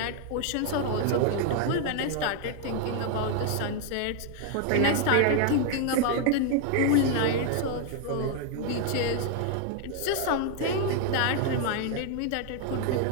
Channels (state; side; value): different; both; correlation 0.01